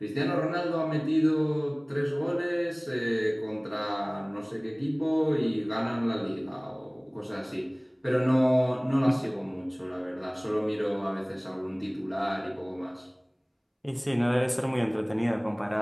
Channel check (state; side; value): identical; both; correlation 1.00